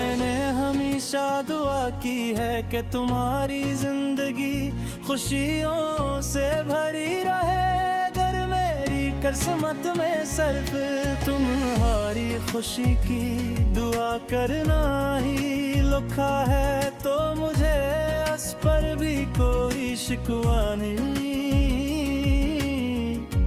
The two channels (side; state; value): both; identical; correlation 1.00